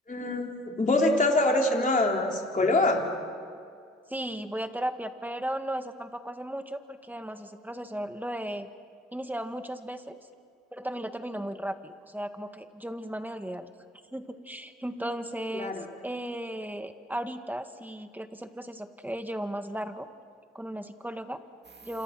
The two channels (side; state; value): both; normal; correlation 0.54